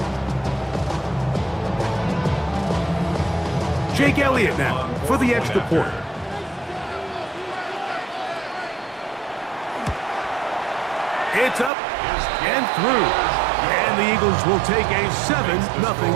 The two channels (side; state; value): left; drops out; at 11.7 s